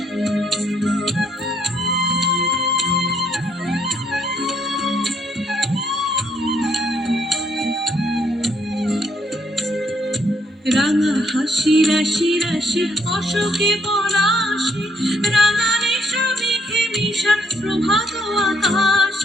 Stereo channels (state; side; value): normal; both; correlation 0.70